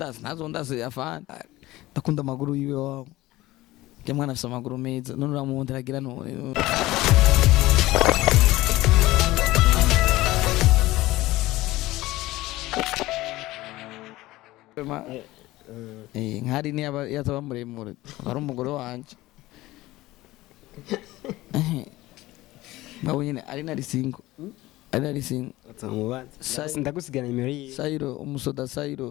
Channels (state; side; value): quieter; right; 18.0 dB